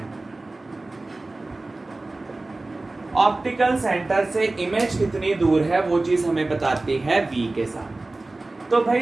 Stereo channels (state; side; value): quieter; left; 3.1 dB